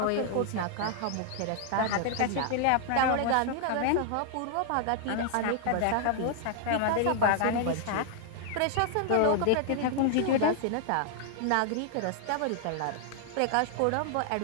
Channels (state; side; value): different; both; correlation 0.00